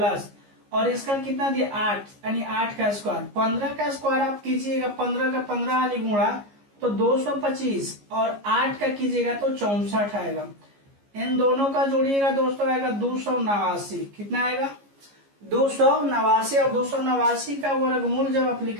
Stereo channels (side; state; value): left; late; 15 ms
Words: और इसका कितना दिया 8 यानी 8 का स्क्वायर। 15 का स्क्वायर आप कीजिएगा 15 का 15 वाली गुणा तो 225 और 8 का कीजिएगा तो 64 आएगा। इन दोनों का जोड़िएगा दोस्तों आएगा 289। कितना आएगा 289 और 289 का वर्गमूल जब आप